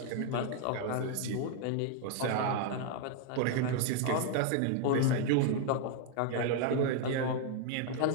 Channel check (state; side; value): different; both; correlation 0.00